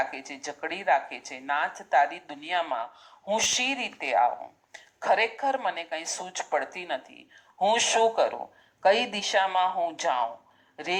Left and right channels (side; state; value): both; identical; correlation 1.00